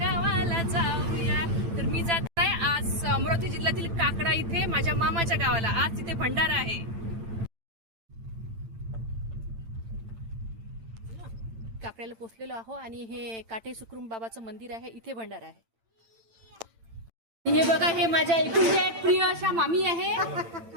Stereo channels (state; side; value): late; left; 8.9 ms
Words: जाऊया. तर मी जात आहे आज अमरावती जिल्ह्यातील काकडा इथे माझ्या मामाच्या गावाला. आज तिथे भंडारा आहे. काकड्याला पोचलेलो आहो आणि हे काटे सुखरूम बाबाचं मंदिर आहे. इथे भंडारा आहे. हे बघा, हे माझ्या एकुलत्या एक प्रिय अशा मामी आहे.